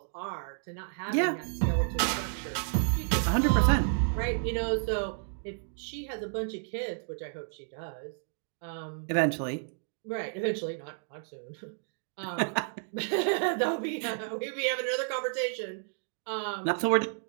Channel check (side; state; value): left; silent; digital silence